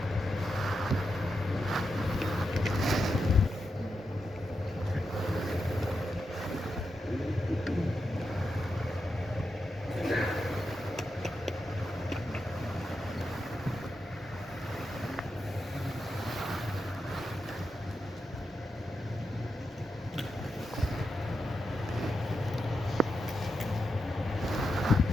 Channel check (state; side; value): normal; both; correlation 0.87